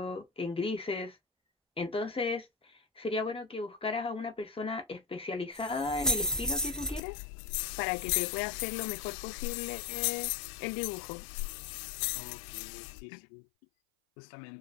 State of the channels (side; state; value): right; drops out; at 7.0 s